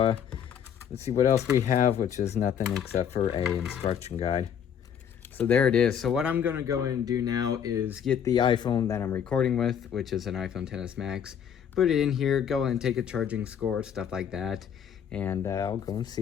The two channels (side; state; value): right; quieter; 8.4 dB